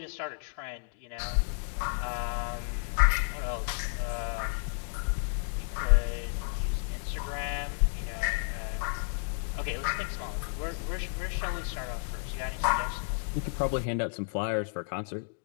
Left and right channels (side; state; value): right; silent; 57 dB below the other